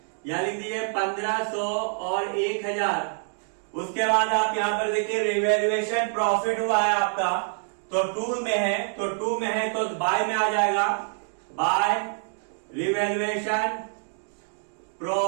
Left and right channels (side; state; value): left; silent; 61 dB below the other